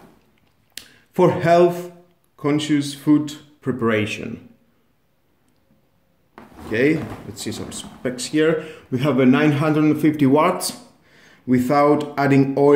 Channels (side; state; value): both; identical; correlation 1.00